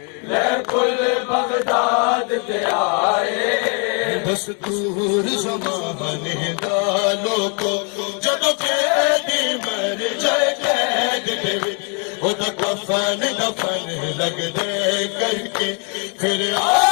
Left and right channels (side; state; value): right; quieter; 36.7 dB